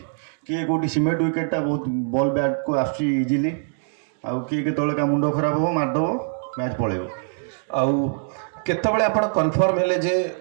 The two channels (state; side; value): silent; left; digital silence